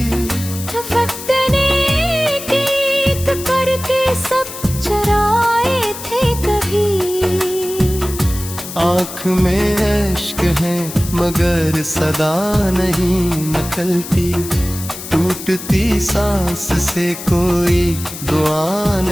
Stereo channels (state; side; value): noise; left; hiss, 11 dB below the sound